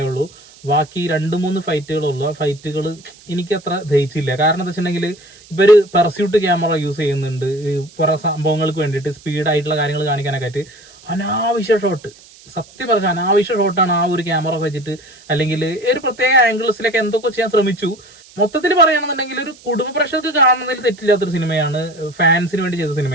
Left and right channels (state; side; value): noise; right; hiss, 24 dB below the sound